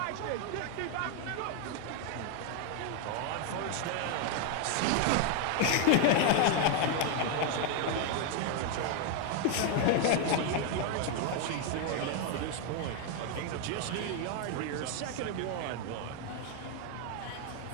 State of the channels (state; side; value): different; both; correlation 0.01